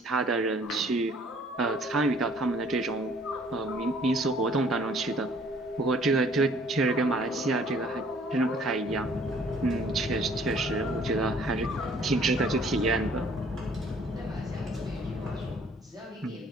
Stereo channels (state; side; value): normal; both; correlation 0.58